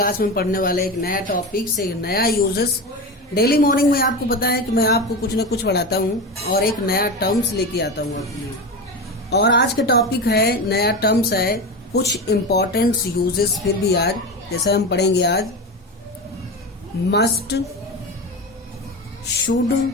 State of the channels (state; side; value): normal; both; correlation 0.23